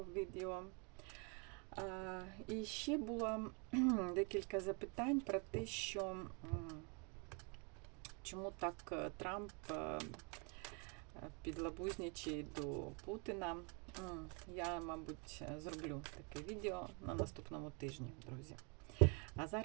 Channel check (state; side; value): quieter; left; 34.3 dB